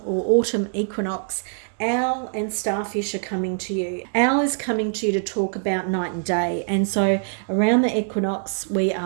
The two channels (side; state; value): left; silent; digital silence